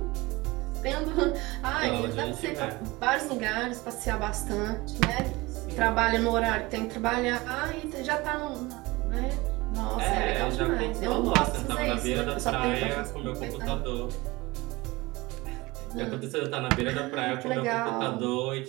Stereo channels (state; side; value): quieter; left; 22.0 dB